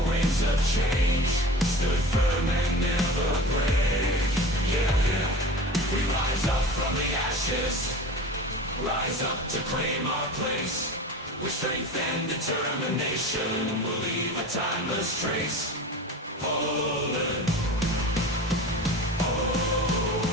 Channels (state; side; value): normal; both; correlation 0.36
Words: winds of change, stood firm and never break. Yeah, we rise up from the ashes, rise up to claim our place. With strength and determination, we'll leave a timeless trace. Poland.